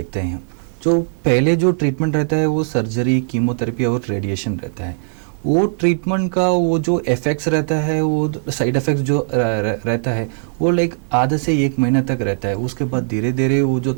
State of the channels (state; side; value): silent; left; digital silence